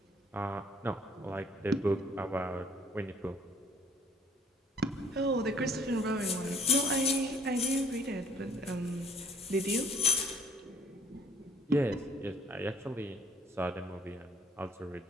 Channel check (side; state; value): both; normal; correlation 0.60